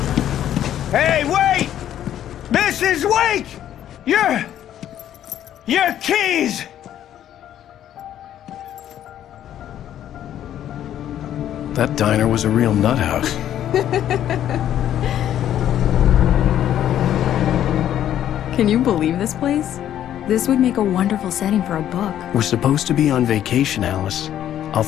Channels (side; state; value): right; quieter; 11.1 dB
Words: Hey, wait! Mrs. Wake! Your keys! That diner was a real nut house. Can you believe this place? This would make a wonderful setting for a book. We're supposed to be on vacation, Alice. I'll